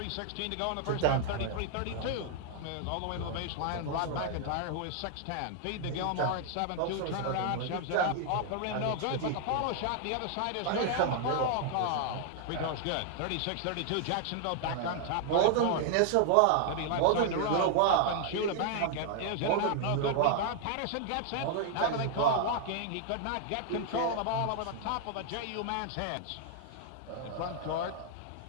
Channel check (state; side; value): different; both; correlation 0.00